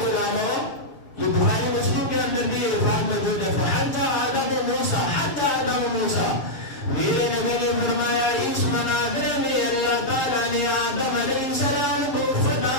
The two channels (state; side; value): late; right; 7.2 ms